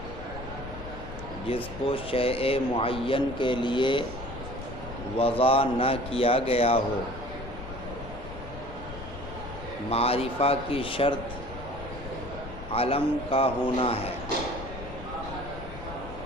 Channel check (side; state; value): left; noise; rumble, 11 dB below the sound